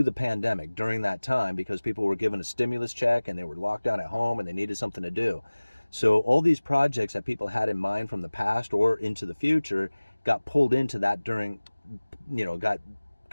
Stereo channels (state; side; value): inverted; both; correlation -1.00